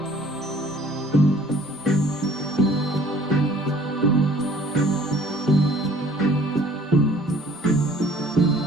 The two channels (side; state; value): both; normal; correlation 0.54